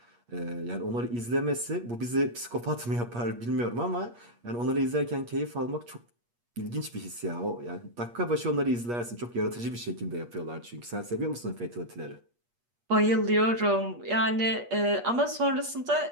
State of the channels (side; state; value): left; late; 8.4 ms